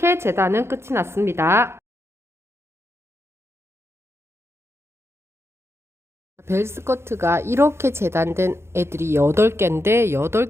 재단은 끝이 났습니다. 벨스커트가 이렇게 재단된 애들이 8개인데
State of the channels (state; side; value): late; left; 0.12 ms